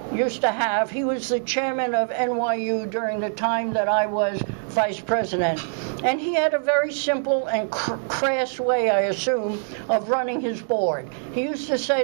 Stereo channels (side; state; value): left; silent; digital silence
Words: used to have, he was the chairman of NYU during the time that I was vice president. And he had a very simple and crass way, I assume, of running his board. He used to